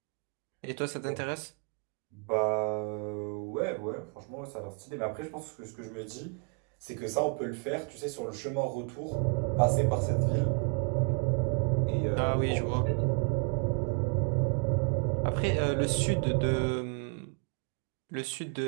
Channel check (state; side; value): quieter; left; 36.7 dB